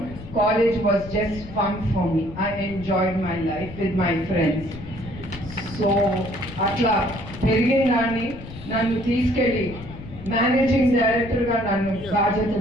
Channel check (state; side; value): noise; left; rumble, 14 dB below the sound